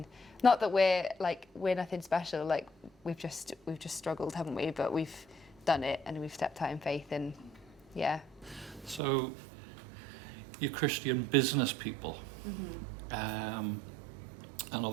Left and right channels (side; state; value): left; drops out; at 9.0 s